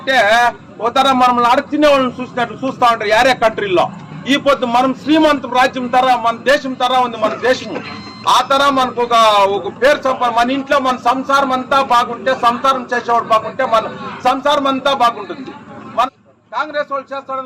ఒక తర మనం అడుగుతున్న వాళ్ళని చూసినట్లు చూస్తా ఉంటారు యారే కంట్రీలో. ఈ పొద్దు మనం శ్రీమంత రాజ్యం తర, మన దేశం తర ఉంది మన దేశము. ఆ తర మనకు ఒక పేరు సంపాదన, మన ఇంట్లో మన సంసారం అంతా బాగుంటే, సంసారం చేసేవాడు బాగుంటే మన సంసారం అంతా బాగుంటుంది. మన కాంగ్రెస్ వాళ్ళు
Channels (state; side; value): identical; both; correlation 1.00